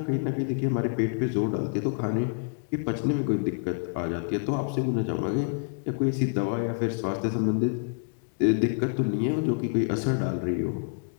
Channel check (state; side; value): silent; right; 60 dB below the other